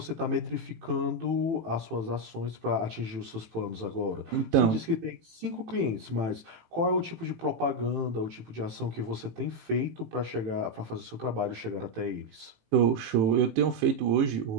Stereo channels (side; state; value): left; late; 18 ms